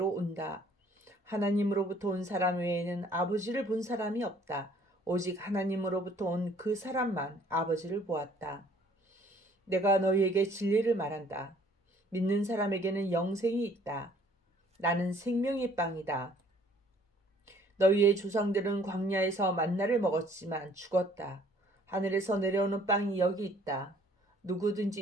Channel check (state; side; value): normal; both; correlation 0.58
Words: 온다. 하나님으로부터 온 사람 외에는 아버지를 본 사람이 없다. 오직 하나님으로부터 온 그 사람만 아버지를 보았다. 내가 너희에게 진리를 말한다. 믿는 사람에게는 영생이 있다. 나는 생명의 빵이다. 너희의 조상들은 광야에서 만나를 먹었지만 죽었다. 하늘에서 내려오는 빵이 여기 있다. 누구든지